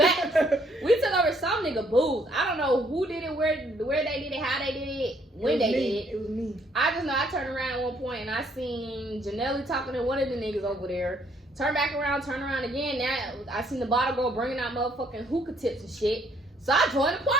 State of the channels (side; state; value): both; normal; correlation 0.67